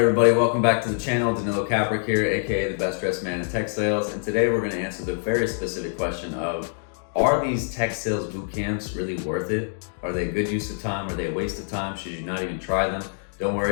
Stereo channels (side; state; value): right; silent; digital silence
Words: everybody, welcome back to the channel. Danilo Caprick here, aka the best dressed man in tech sales. And today we're going to answer the very specific question of, are these tech sales boot camps really worth it? Are they a good use of time? Are they a waste of time? Should you not even try them? Don't